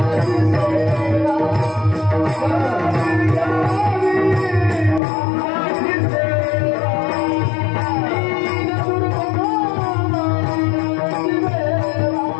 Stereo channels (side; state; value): right; drops out; at 5.0 s